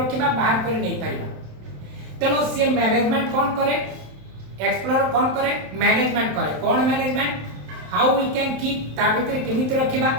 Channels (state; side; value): late; left; 27 ms